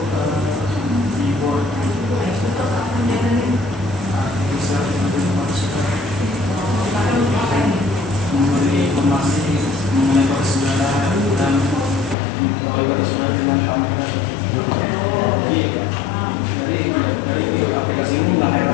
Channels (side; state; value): right; drops out; at 12.2 s